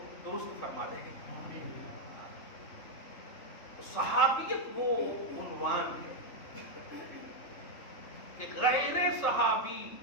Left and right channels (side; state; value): right; late; 3.5 ms